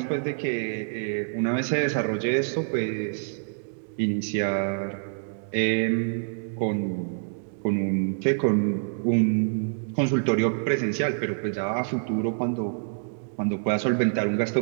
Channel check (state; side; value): silent; left; digital silence